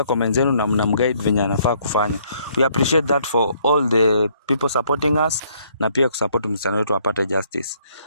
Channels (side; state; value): both; inverted; correlation -0.66